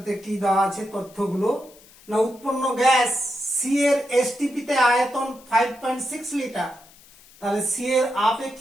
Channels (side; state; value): left; noise; hiss, 25 dB below the sound